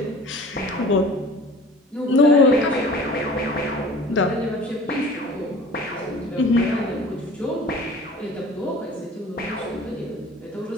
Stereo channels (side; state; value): both; normal; correlation 0.44